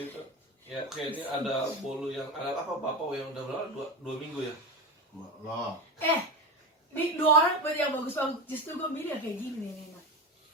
Ya, kayak ini ada bolu yang ada apa bapak yang udah berapa? Dua minggu ya. Loh. Ini 2 orang yang bagus-bagus, justru gue milih yang kayak gini nih.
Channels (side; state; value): both; normal; correlation 0.22